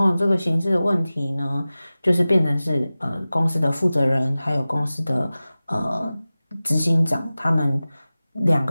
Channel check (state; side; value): inverted; both; correlation -0.97